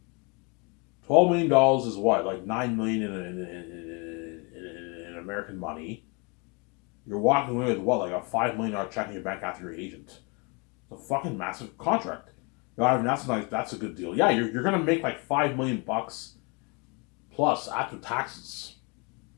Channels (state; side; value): quieter; right; 31.4 dB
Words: $12 million is what? Like $9 million in American money. You're walking away with what? Like a $5 million check in your bank after your agent. It's a fucking massive contract. You know, I mean, that's a good deal. Yeah, you're gonna make like $5 million plus after taxes.